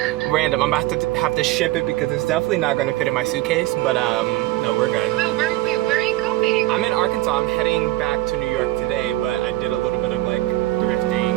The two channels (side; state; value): left; quieter; 17.4 dB